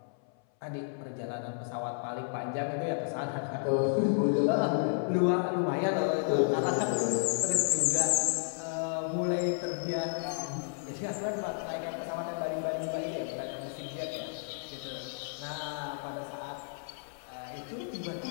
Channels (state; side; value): silent; right; 56 dB below the other